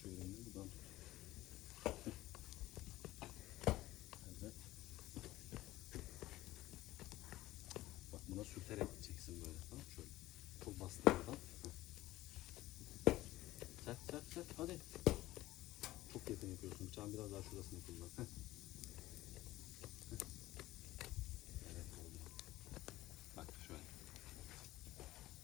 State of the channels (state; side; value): quieter; right; 16.7 dB